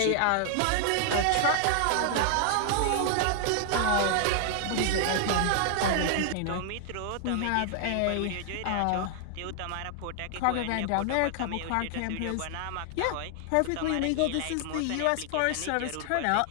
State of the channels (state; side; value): different; both; correlation 0.00